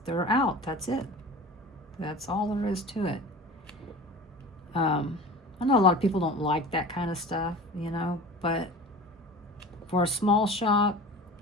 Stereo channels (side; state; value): both; normal; correlation 0.37